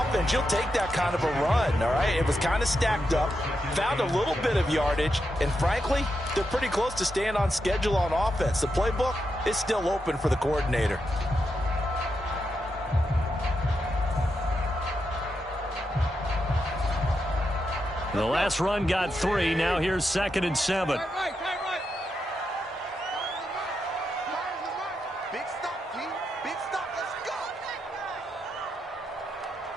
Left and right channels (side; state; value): both; normal; correlation 0.85